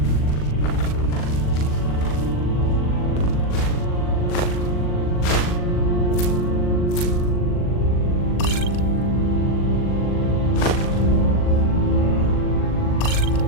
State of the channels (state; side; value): late; right; 40 ms